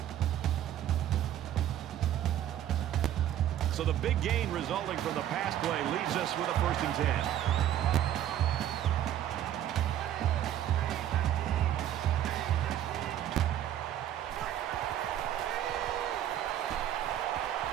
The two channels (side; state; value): left; quieter; 11.3 dB